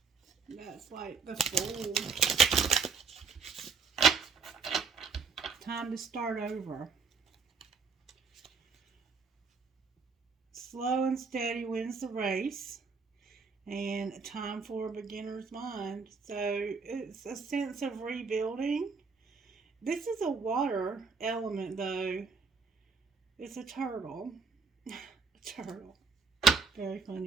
That's like the Fool. Time to start over. Slow and steady wins the race. And time for a beginner's mind. So it's a sense of rebuilding. This is a water element, though. It's a turtle. A turtle. Very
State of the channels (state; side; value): quieter; left; 5.1 dB